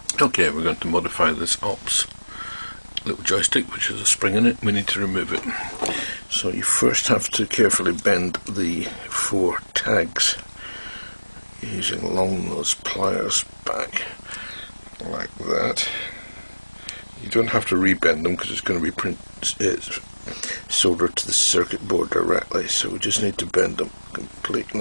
Okay, we're going to modify this ALPS little joystick, which has a spring in it. We need to remove it. So you first have to carefully bend the 4 tags using long nose pliers back like that. You don't have to rebend them because it's going to be soldered to the circuit board directly, so we just need to bend them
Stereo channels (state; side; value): inverted; both; correlation -1.00